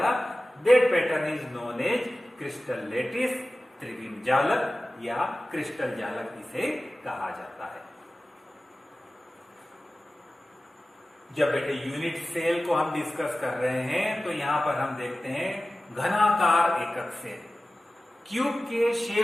that pattern is known as crystal lattice, त्रिविम जालक या क्रिस्टल जालक इसे कहा जाता है। जब बेटे यूनिट सेल को हम डिस्कस कर रहे हैं तो यहां पर हम देखते हैं घनाकार एकक सेल, क्यूब के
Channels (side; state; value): both; normal; correlation 0.96